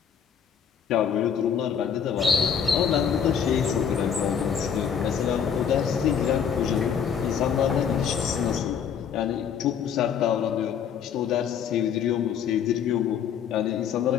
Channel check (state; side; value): quieter; right; 7.7 dB